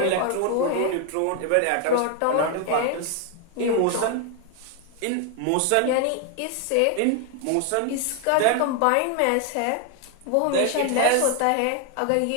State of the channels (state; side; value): different; both; correlation 0.00